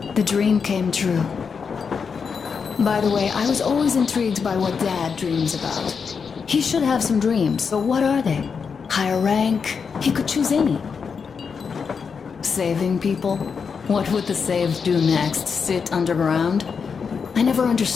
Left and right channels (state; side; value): quieter; right; 5.9 dB